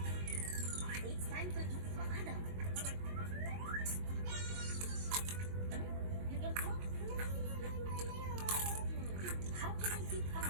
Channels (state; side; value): late; left; 22 ms